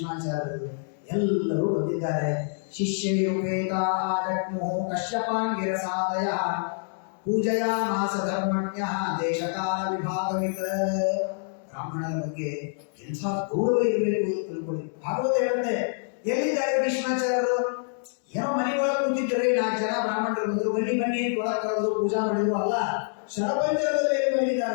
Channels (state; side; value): silent; right; digital silence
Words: ಎಲ್ಲರೂ ಬಂದಿದ್ದಾರೆ. ಶಿಷ್ಯೈರುಪೇತಾ ಜಗ್ಮುಃ ಕಶ್ಯಪಾಂಗಿರಸಾದಯ ಪೂಜಯಾಮಾಸ ಧರ್ಮಣ್ಯಃ ದೇಶಕಾಲ ವಿಭಾಗವಿತ. ಬ್ರಾಹ್ಮಣರ ಬಗ್ಗೆ ಎಂಥ ಗೌರವ ಇರಬೇಕು ಅಂತ ತಿಳ್ಕೊಳ್ಳಿ. ಭಾಗವತ ಹೇಳುತ್ತೆ, ಎಲ್ಲಿದ್ದಾರೆ ಭೀಷ್ಮಾಚಾರ್ಯರು? ಏನೋ ಮನೆಯೊಳಗೆ ಕೂತಿದ್ದರೆ 4 ಜನ ಬ್ರಾಹ್ಮಣರು ಬಂದರು, ಬನ್ನಿ ಬನ್ನಿ ಒಳಗೆ ಕರೆದು ಪೂಜಾ ಮಾಡಿದ್ರು ಅಲ್ಲ, ಶರಪಂಜರದಲ್ಲಿ